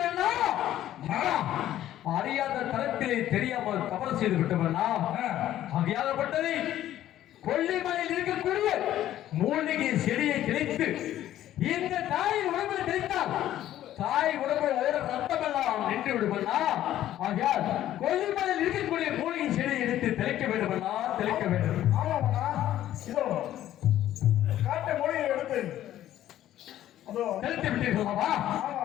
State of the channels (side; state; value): right; quieter; 12.7 dB